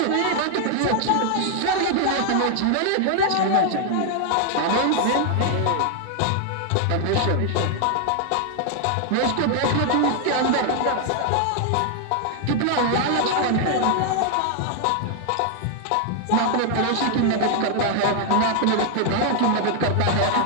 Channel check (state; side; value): different; both; correlation 0.00